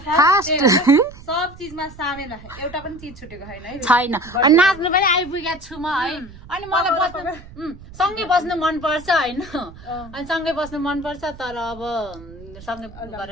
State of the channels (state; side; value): noise; right; rumble, 18 dB below the sound